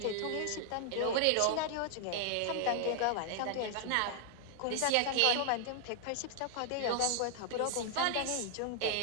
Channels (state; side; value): different; both; correlation 0.00